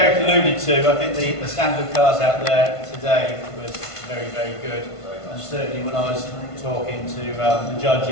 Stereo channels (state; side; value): late; right; 1.5 ms